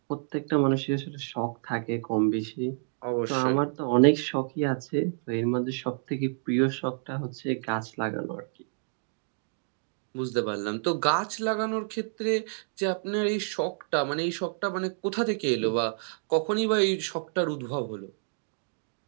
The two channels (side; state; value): left; silent; digital silence